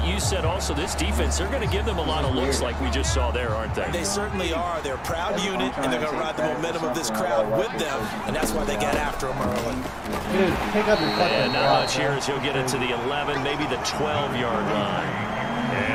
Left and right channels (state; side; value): identical; both; correlation 1.00